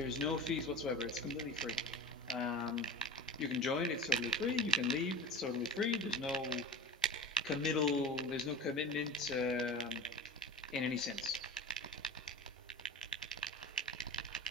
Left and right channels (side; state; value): both; normal; correlation 0.33